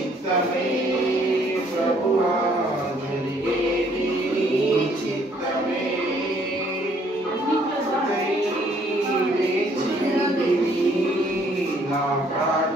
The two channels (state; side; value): normal; both; correlation 0.64